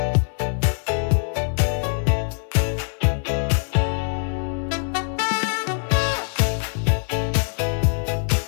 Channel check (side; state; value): right; silent; digital silence